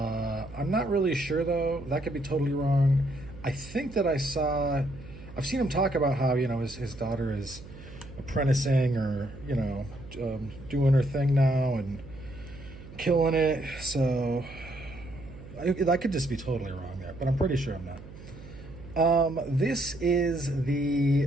not really sure though. That could be totally wrong. I think that I've seen him talk about how his daughter is apprenticing or doing her thing now and killing it. So I could just be totally wrong there, but I'm pretty sure I'm not. This is I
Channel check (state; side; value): noise; right; hum, 16 dB below the sound